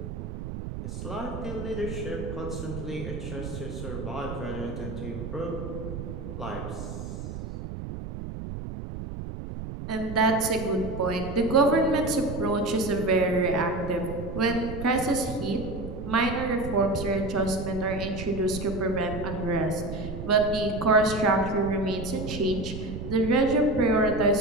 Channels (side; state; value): right; noise; rumble, 8 dB below the sound